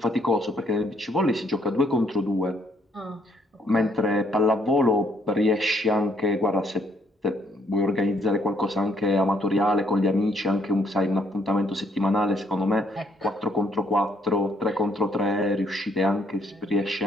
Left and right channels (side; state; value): both; normal; correlation 0.69